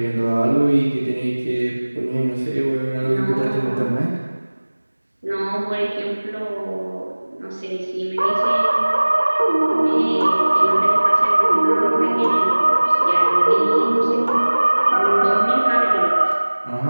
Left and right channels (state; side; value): inverted; both; correlation -1.00